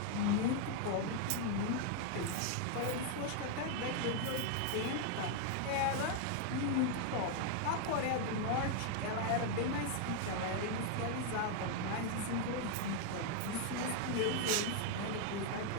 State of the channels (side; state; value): both; different; correlation 0.00